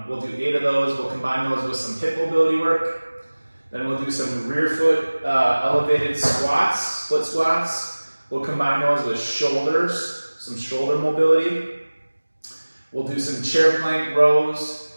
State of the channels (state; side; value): inverted; both; correlation -1.00